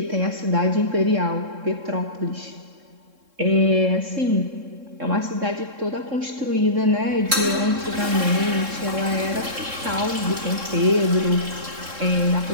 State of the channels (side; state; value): left; late; 3.7 ms